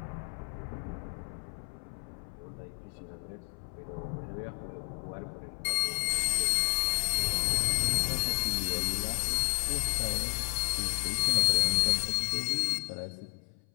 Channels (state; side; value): silent; right; 57 dB below the other